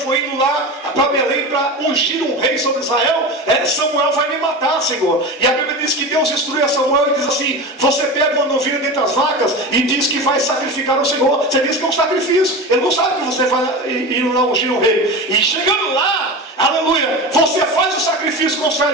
indo lá para Belém para ungir um rei sobre Israel, Samuel vai me matar, Senhor. E a Bíblia diz que Deus instrui a Samuel e diz assim: você pega uma novilha dentre as vacas e diz que vai sacrificar ao Senhor. Você diz que é um sacrifício. Ele não sabe que você vai ir lá ungir um rei. E chegando lá, aleluia, você faz o sacrifício com os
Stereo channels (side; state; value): both; normal; correlation 0.27